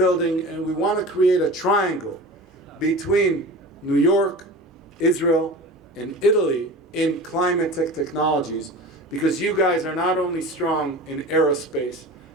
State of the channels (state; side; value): normal; both; correlation 0.34